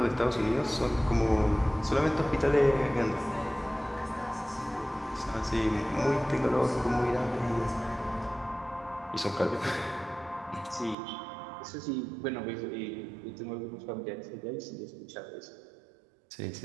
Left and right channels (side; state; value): left; drops out; at 11.0 s